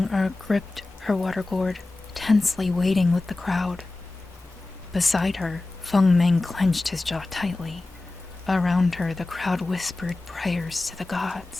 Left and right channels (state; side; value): quieter; right; 3.1 dB